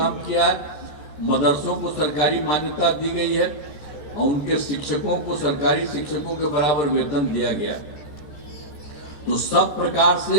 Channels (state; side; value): late; right; 13 ms